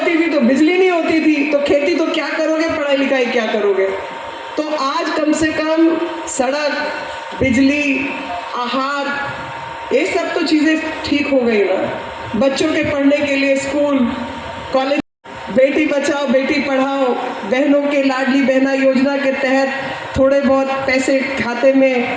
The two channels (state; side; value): identical; both; correlation 1.00